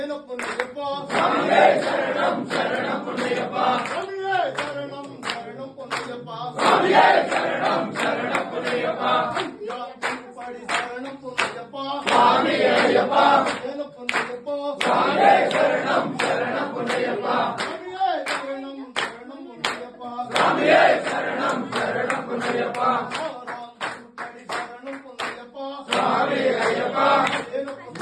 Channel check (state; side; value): identical; both; correlation 1.00